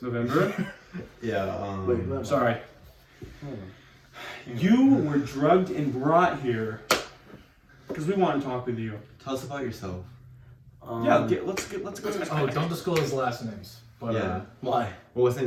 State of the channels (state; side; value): identical; both; correlation 1.00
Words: November? Yeah, Wait, sorry. You were drugged and brought here because we want to talk with you. Tell us about yourself. Let's go. Oh, don't disclose last names. But Why? Well, his